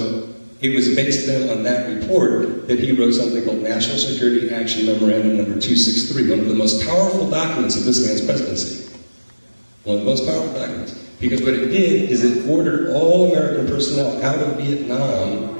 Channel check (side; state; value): both; inverted; correlation -1.00